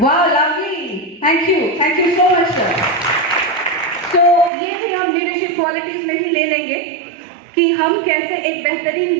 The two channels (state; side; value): drops out; left; at 4.5 s